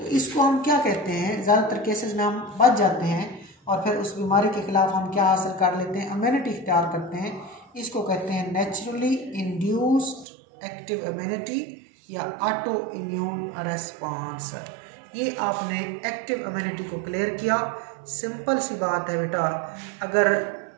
इसको हम क्या कहते हैं, ज़्यादातर केसेस में हम बच जाते हैं और फिर उस बीमारी के खिलाफ हम क्या हासिल कर लेते हैं, इम्यूनिटी इख्तियार करते हैं। इसको कहते हैं नेचुरली इंड्यूस्ड एक्टिव इम्यूनिटी या ऑटो इम्यून रिस्पॉन्स। ये आपने एक्टिव इम्यूनिटी को क्लियर किया। सिंपल सी बात है बेटा, अगर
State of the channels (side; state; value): left; drops out; at 10.2 s